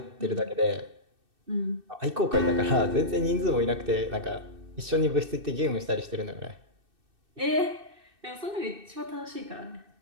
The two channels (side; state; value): left; late; 2.6 ms